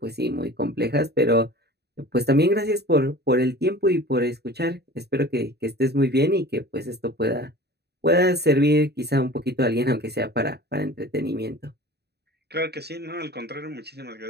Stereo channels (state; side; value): late; left; 0.48 ms